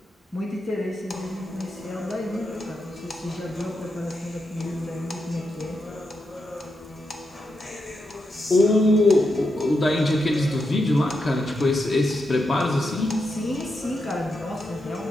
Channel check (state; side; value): normal; both; correlation 0.85